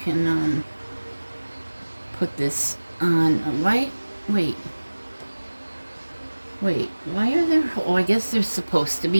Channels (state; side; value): inverted; both; correlation -1.00